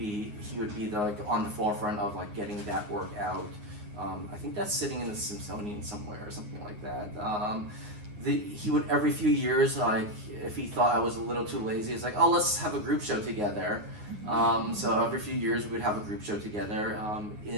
like on the forefront of like getting that work out. I think that's sitting in the Smithsonian somewhere or something like that. He would every few years, like if he thought I was a little too lazy, it's like, oh, let's have a group show together. So every few years we would have a group show together.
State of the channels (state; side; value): late; left; 9.6 ms